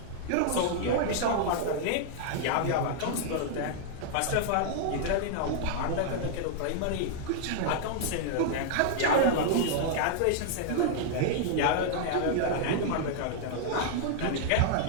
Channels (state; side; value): different; both; correlation -0.01